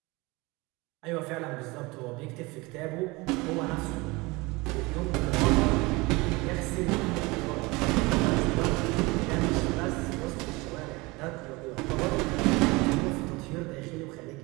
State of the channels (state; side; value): quieter; left; 24.0 dB